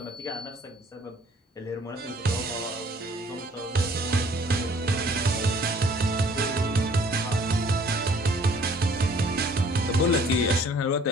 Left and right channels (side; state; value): both; normal; correlation 0.57